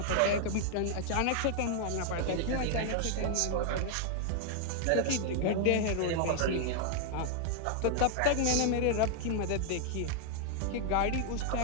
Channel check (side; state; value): both; different; correlation 0.00